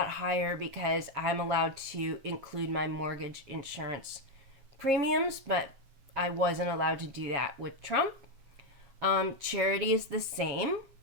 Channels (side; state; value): left; late; 7.4 ms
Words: higher because I'm allowed to include my mortgage insurance premiums, but I wasn't allowed to do that with Trump. Charity is the same.